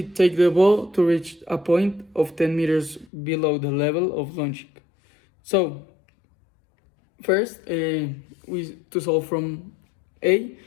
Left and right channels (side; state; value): right; drops out; at 3.1 s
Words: take the ball to reach a point of 10 meters below the level of launching? So, first, to solve from A,